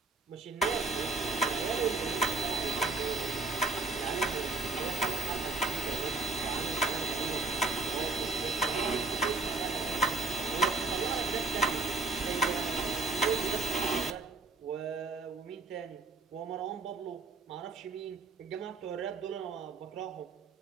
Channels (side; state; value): left; quieter; 3.5 dB